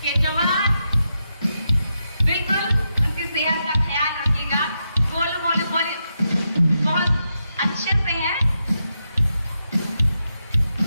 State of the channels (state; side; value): inverted; both; correlation -0.85